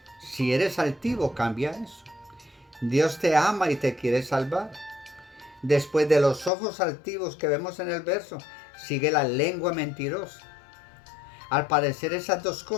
Si eres altivo, cambia eso. Dios te ama y te quiere salvar. Después de los ojos altivos que vemos en el verso, sigue la lengua mentirosa. Al parecer, esas dos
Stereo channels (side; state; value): right; drops out; at 6.5 s